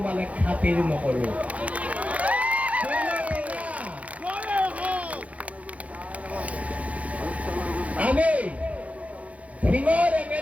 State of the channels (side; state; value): left; late; 0.066 ms